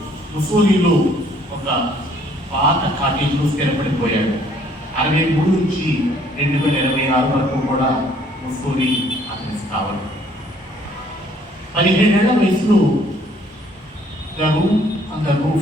ముసోలిలో ఒక పాత కాటేజ్లో స్థిరపడిపోయాడు. 63 నుంచి 2026 వరకు కూడా ముసోలి అతని స్థావరం. 17 ఏళ్ల వయసులో the room on the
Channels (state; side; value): normal; both; correlation 0.61